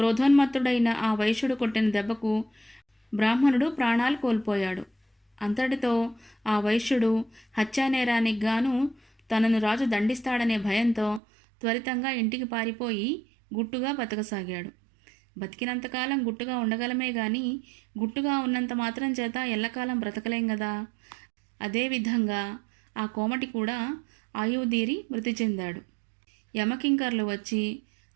ఆ వైశ్యుడు కొట్టిన దెబ్బకు బ్రాహ్మణుడు ప్రాణాలు కోల్పోయాడు. అంతటితో ఆ వైశ్యుడు హత్యానేరానికి గాను తనను రాజు దండిస్తాడనే భయంతో త్వరితంగా ఇంటికి పారిపోయి గుట్టుగా బతకసాగాడు. బతికినంతకాలం గుట్టుగా ఉండగలమే గాని గుట్టుగా ఉన్నంత మాత్రం చేత ఎల్లకాలం బ్రతకలేం గదా. అదేవిధంగా ఆ కోమటి కూడా ఆయువుదీరి మృతి చెందాడు. యమకింకర్లు వచ్చి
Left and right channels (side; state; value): left; drops out; at 11.2 s